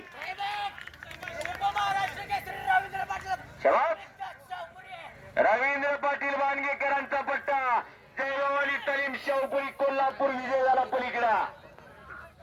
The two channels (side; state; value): both; identical; correlation 1.00